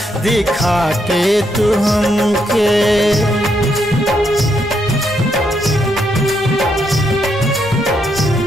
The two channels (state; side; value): normal; both; correlation 0.77